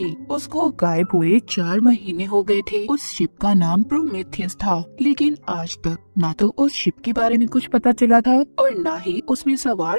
उसको गायब हुए 4 महीने हो गए थे। उस शिप का नाम प्रोमेथियस था, लेकिन आज तक ना तो उस शिप के बारे में कुछ पता चला था और ना ही उसमें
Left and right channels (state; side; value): inverted; both; correlation -1.00